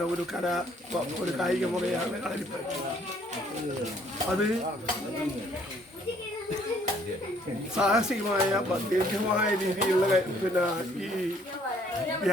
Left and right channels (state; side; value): normal; both; correlation 0.63